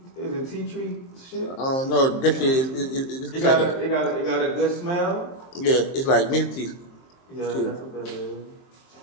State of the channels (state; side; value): late; right; 23 ms